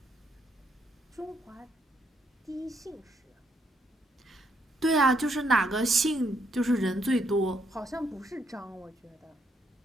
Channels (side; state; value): both; normal; correlation 0.74